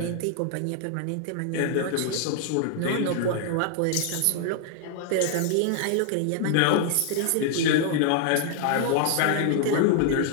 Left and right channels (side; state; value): both; different; correlation 0.00